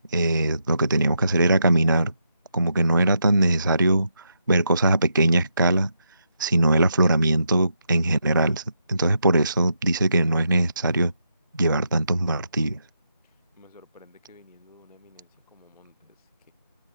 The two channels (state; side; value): inverted; both; correlation -0.81